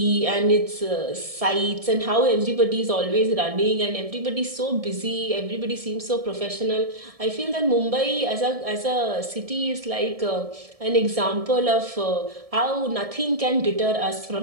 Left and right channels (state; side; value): late; left; 1.7 ms